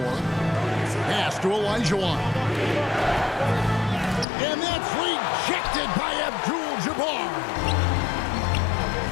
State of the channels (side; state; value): right; drops out; at 4.2 s